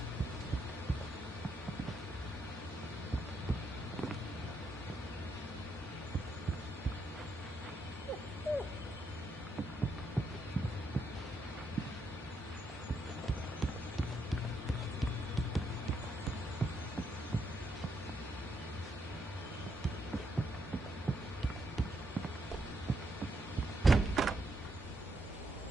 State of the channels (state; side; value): normal; both; correlation 0.78